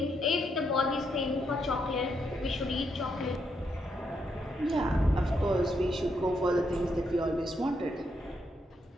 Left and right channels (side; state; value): both; normal; correlation 0.78